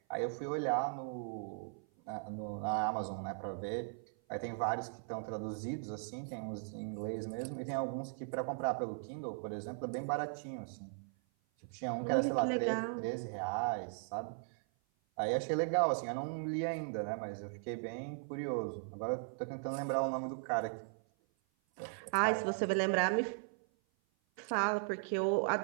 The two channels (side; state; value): left; silent; 52 dB below the other